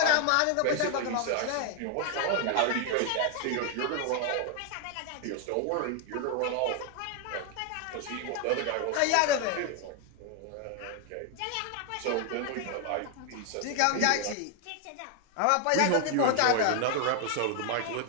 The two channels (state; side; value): different; both; correlation 0.00